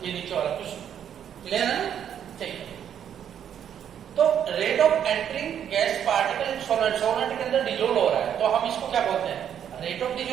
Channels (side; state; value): left; quieter; 9.2 dB